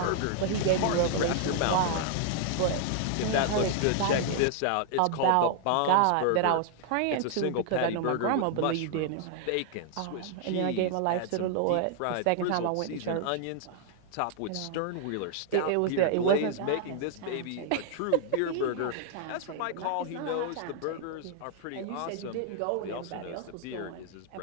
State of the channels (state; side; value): different; both; correlation 0.00